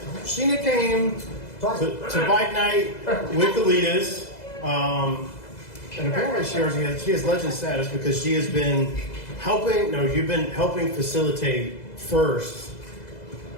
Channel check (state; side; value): late; right; 2.0 ms